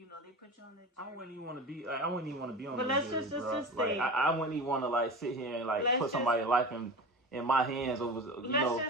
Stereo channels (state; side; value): normal; both; correlation 0.31